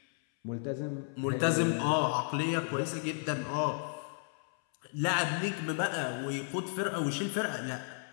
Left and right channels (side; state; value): right; silent; 56 dB below the other